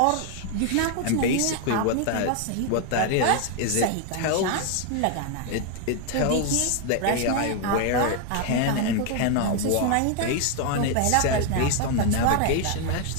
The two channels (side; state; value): both; different; correlation 0.01